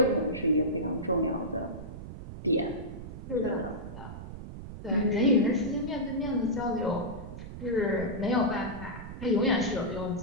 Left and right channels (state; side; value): noise; right; rumble, 11 dB below the sound